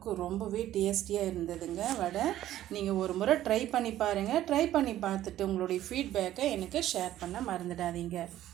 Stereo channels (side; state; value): left; quieter; 13.2 dB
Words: ரொம்பவே டேஸ்டியாக இருந்ததுங்க வடை. நீங்கள் ஒரு முறை ட்ரை பண்ணி பாருங்கள். ட்ரை பண்ணி பார்த்துட்டு உங்களுடைய ஃபீட்பேக்கை எனக்கு ஷேர் பண்ண மறந்துடாதீங்க.